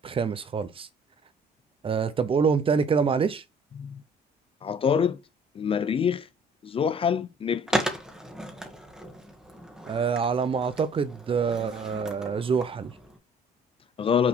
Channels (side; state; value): both; normal; correlation 0.54